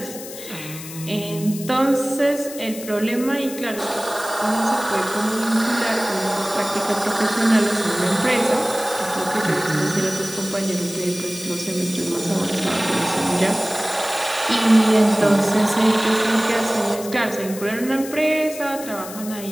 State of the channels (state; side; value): noise; left; hiss, 13 dB below the sound